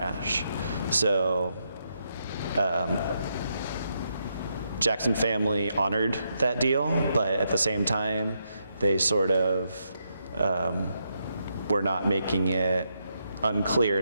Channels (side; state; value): both; inverted; correlation -0.81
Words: So Jackson family honored that deal, but at the same time, they sort of were not making it